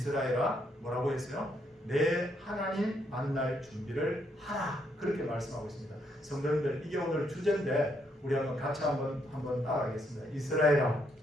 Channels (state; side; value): normal; both; correlation 0.74